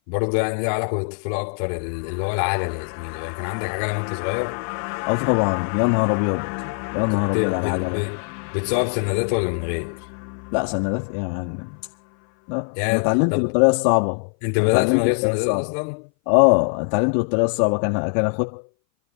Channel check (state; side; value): silent; right; 59 dB below the other